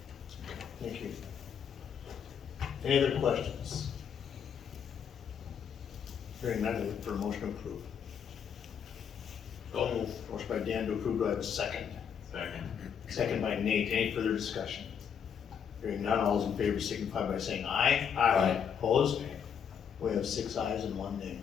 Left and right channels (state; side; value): quieter; right; 7.6 dB